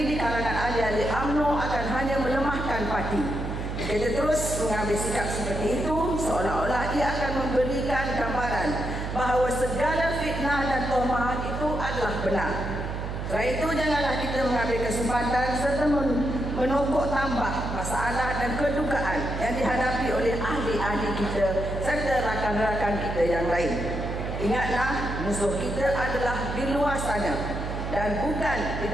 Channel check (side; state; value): right; noise; hum, 5 dB below the sound